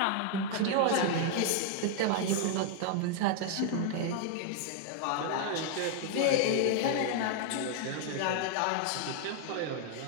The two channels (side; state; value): both; different; correlation 0.00